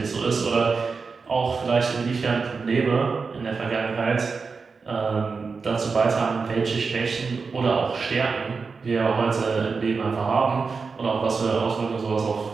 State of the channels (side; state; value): left; quieter; 4.8 dB